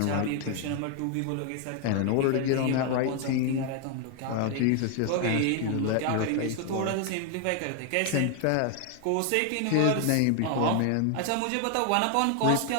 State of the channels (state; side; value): different; both; correlation 0.00